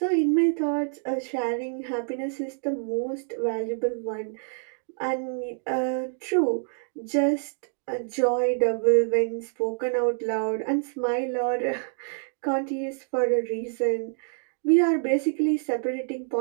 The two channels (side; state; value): left; silent; digital silence